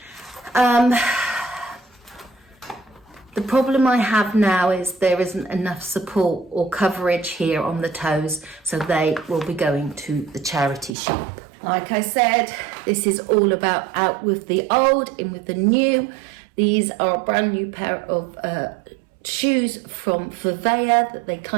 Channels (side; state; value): left; drops out; at 11.0 s